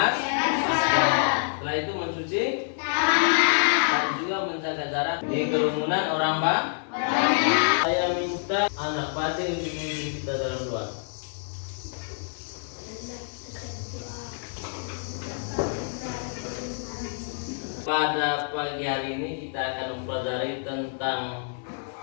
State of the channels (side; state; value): right; silent; digital silence